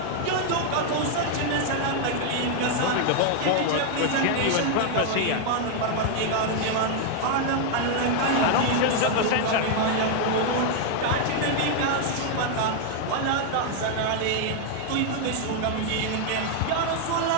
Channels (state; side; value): different; both; correlation 0.00